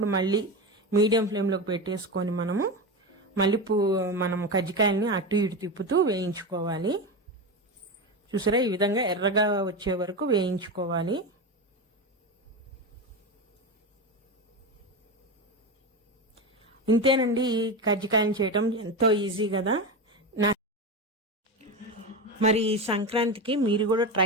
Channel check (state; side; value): normal; both; correlation 0.19